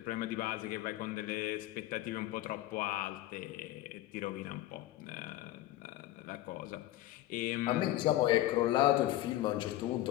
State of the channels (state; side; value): quieter; right; 15.4 dB